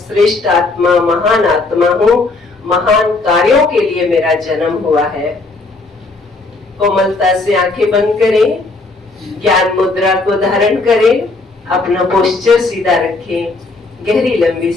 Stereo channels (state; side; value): quieter; right; 3.4 dB